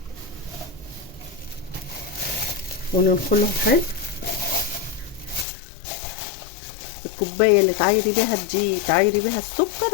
وننخلهم حلو. الكوبايه اللي تعايري بيها الدقيق تعايري بيها السكر،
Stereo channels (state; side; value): drops out; right; at 5.5 s